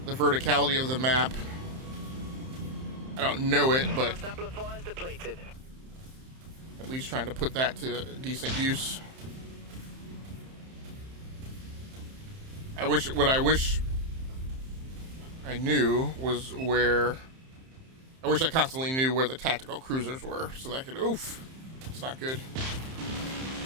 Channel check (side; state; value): left; late; 31 ms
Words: verticality of the map. I don't know it, but Thrust amplifiers depleted. at least trying to put that to decent use. What I wish I knew was where. I wish I constantly knew where the tactical cruisers were, so that I could. Oof, it's not good.